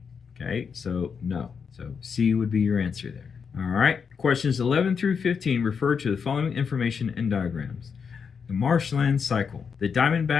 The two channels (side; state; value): right; quieter; 6.2 dB